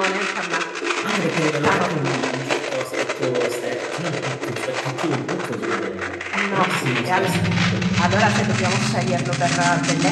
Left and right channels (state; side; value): identical; both; correlation 1.00